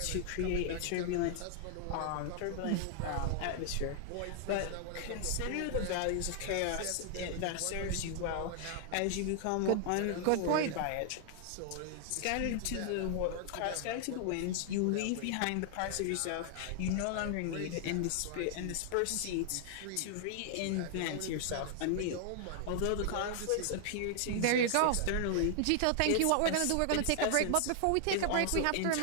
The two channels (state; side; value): different; both; correlation 0.00